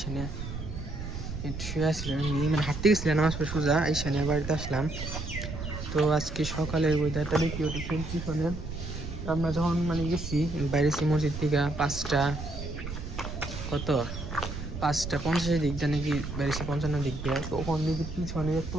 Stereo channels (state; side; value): noise; right; rumble, 7 dB below the sound